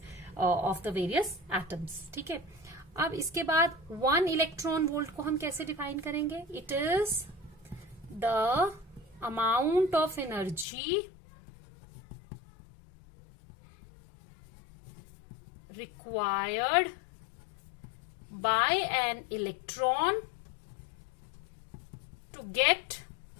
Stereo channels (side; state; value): right; drops out; at 10.7 s